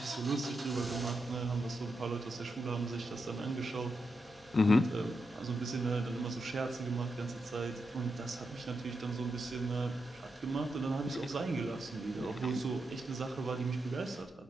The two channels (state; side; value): normal; both; correlation 0.85